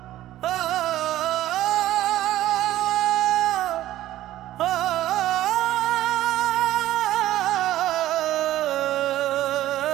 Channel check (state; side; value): quieter; left; 14.3 dB